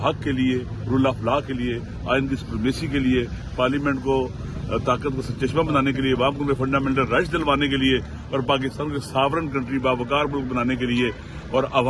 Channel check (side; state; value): both; identical; correlation 1.00